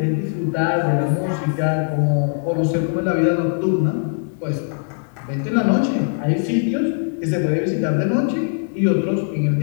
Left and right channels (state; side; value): silent; right; digital silence